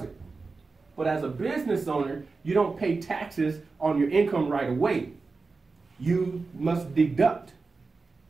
But as a business owner, you don't pay taxes on your income right away. You must deduct,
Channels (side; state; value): left; quieter; 4.1 dB